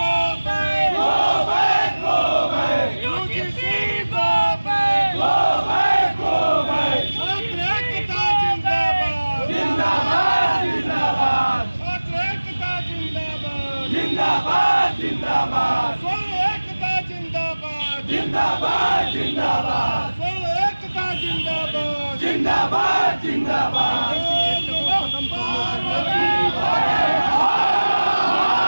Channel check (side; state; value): both; inverted; correlation -1.00